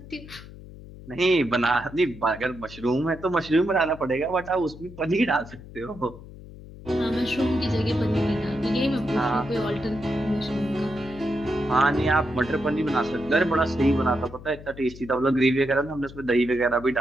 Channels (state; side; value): noise; left; hum, 16 dB below the sound